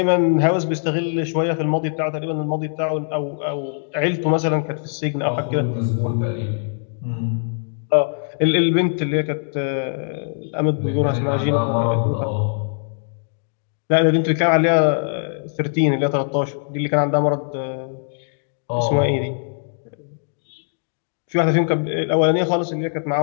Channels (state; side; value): silent; right; digital silence